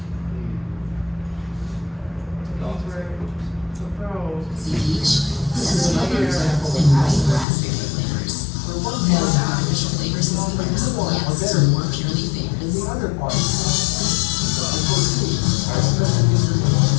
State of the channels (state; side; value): drops out; right; at 7.5 s